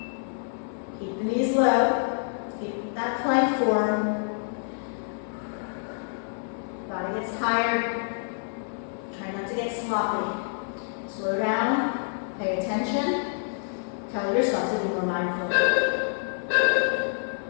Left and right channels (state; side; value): silent; right; 58 dB below the other